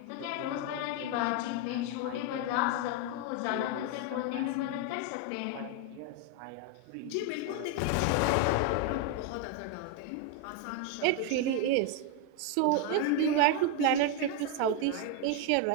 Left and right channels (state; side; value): different; both; correlation 0.01